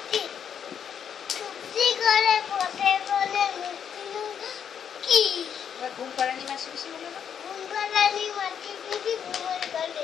চুপসি করে পথে বলে কি এবার ঘুম পাড়ানি মাসি পিসি বলে না ঘুম পাড়ানি মাটি পিটি ঘুমোর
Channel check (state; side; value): quieter; right; 8.1 dB